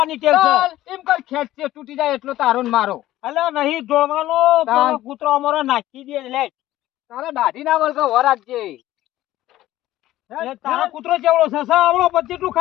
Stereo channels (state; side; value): quieter; right; 15.0 dB